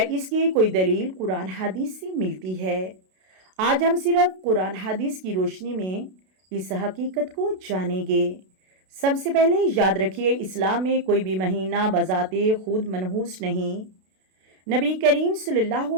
इसकी कोई दलील कुरान हदीस से मिलती है? आज हम सिर्फ कुरान हदीस की रोशनी में इस हकीकत को जानेंगे। सबसे पहले याद रखिए, इस्लाम में कोई भी महीना बज़ाते खुद मनहूस नहीं। नबी करीम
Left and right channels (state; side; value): late; left; 32 ms